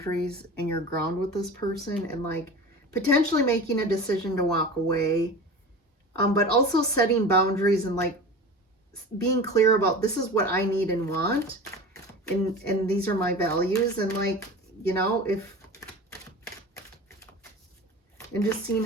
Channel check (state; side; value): normal; both; correlation 0.34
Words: and your ground with this person, and like potentially making a decision to walk away. But also setting boundaries and like being clear about, this is what I need and want. And these are my values. And like, you know, and just seeing